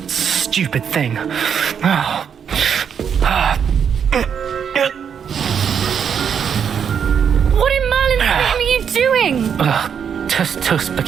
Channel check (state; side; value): quieter; left; 7.5 dB